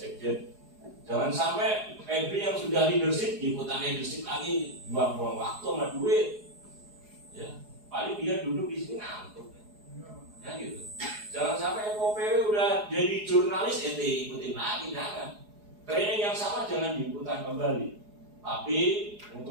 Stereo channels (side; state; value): left; late; 4.8 ms